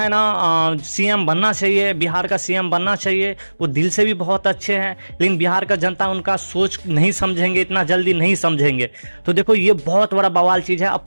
ना सीएम बनना चाहिए, बिहार का सीएम बनना चाहिए। वो दिल से भी बहुत अच्छे हैं, लेकिन बिहार का जनता उनका सोच नहीं समझेंगे, इतना जल्दी नहीं समझेंगे। तो देखो ये बहुत बड़ा बवाल चीज़ है।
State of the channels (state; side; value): inverted; both; correlation -1.00